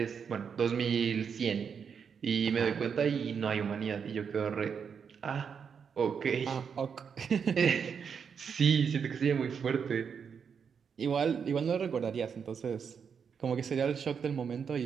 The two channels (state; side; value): quieter; left; 6.7 dB